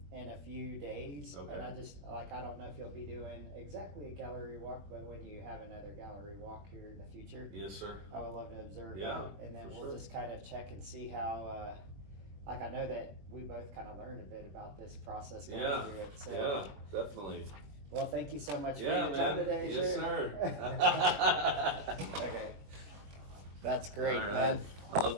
in a few days. Okay. And I don't know if you'll be doing exactly a gallery walk, but when you have another gallery walk here in the future, Yes, sir. I would love to observe Yeah, that. And then for we'll sure. just kind of check and see how, like I know that we both kind of learned a bit about this process going Yeah, through it. So, yeah, definitely. well, thank you so much for Yeah, your man. time today, Yes, sir. sir. Okay. That's great, All right. man. I love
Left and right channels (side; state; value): left; late; 21 ms